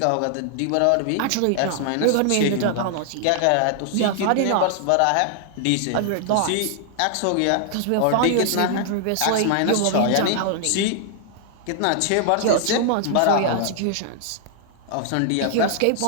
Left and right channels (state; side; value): different; both; correlation 0.00